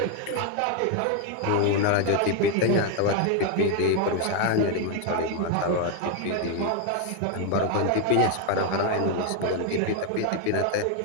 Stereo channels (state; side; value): different; both; correlation 0.01